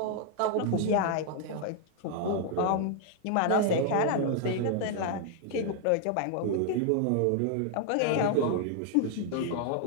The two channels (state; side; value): different; both; correlation 0.00